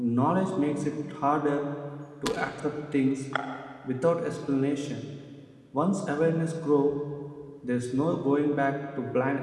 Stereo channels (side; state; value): both; identical; correlation 1.00